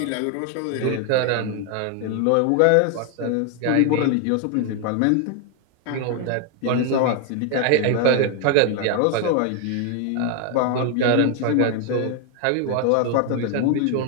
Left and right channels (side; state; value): both; different; correlation 0.01